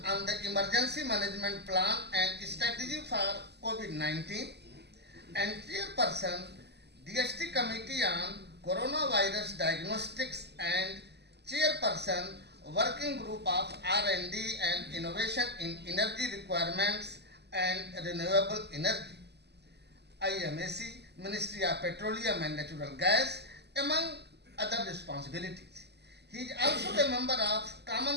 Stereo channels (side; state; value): left; late; 0.49 ms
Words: on the Emergency Management Plan and Strategy for COVID-19, and Chairperson DST Committee on Coronavirus Diagnostics and Chairperson Working Group of R&D and Innovation in Energy Requirements and Renewable Energy, IMAC, Ministry of Petroleum and Natural Gas, among other responsibilities. He is also a member of